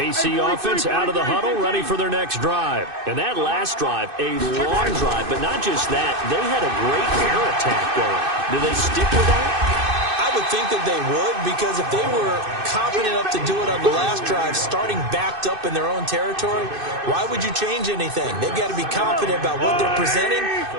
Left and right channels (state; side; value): late; left; 2.6 ms